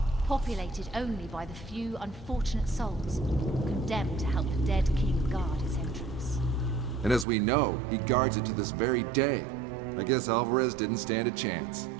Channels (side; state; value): left; drops out; at 7.2 s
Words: populated only by the few unfortunate souls condemned to help the dead king guard its entrance. And as we know, he guards it to this very day. I guess Alvarez didn't stand a chance.